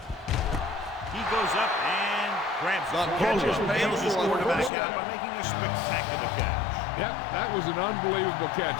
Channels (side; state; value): right; drops out; at 4.7 s